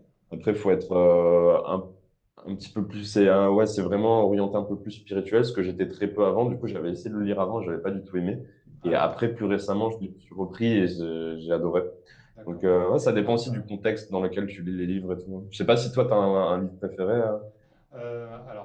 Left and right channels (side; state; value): both; identical; correlation 1.00